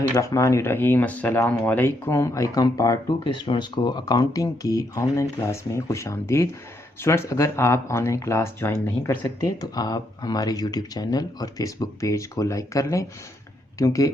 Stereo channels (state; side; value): normal; both; correlation 0.76